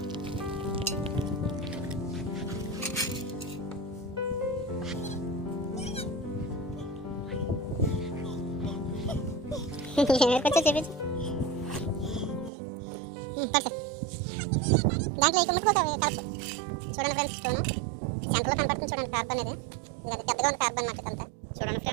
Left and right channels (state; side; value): drops out; left; at 12.5 s